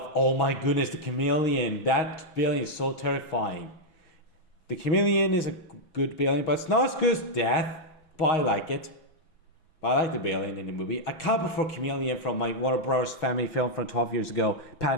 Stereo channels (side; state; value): right; late; 6.4 ms